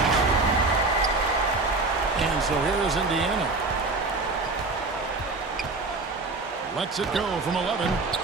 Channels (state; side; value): quieter; left; 3.4 dB